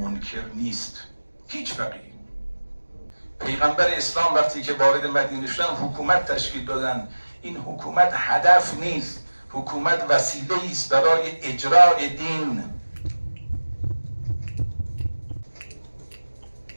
نیست. هیچ فقیه. پیغمبر اسلام وقتی که وارد مدینه شدن حکومت تشکیل دادن. این حکومت هدف نیست، حکومت وسیله است برای اجرای دین.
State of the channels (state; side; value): inverted; both; correlation -1.00